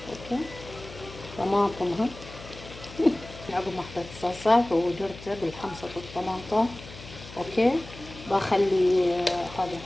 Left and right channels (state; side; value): noise; left; hum, 16 dB below the sound